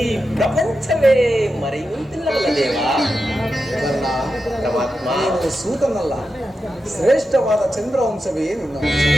ಪ್ರಪಂಚವೇ ಮರೆಯುವಂತಿಲ್ಲವಲ್ಲ ದೇವ? ಕರ್ಣ, ಪರಮಾತ್ಮ, ನೀನು ಸೂತನಲ್ಲ, ಶ್ರೇಷ್ಠವಾದ ಚಂದ್ರವಂಶವೇ ನಿನ್ನ ವಂಶ.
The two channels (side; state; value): both; normal; correlation 0.89